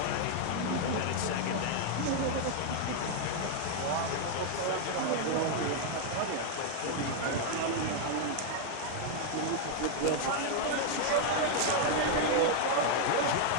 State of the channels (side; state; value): both; different; correlation 0.00